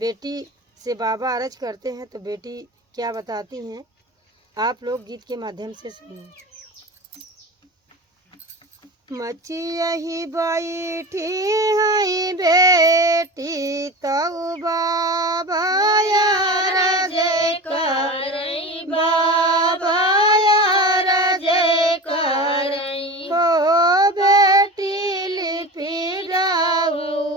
से बाबा अर्ज करते हैं तो बेटी क्या बताती हैं, आप लोग गीत के माध्यम से सुनिए। मचियही बैठी है बेटी तऊ बाबा यार जय करई, बाबा यार जय करई हो। बेटी लिपि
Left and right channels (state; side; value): normal; both; correlation 0.30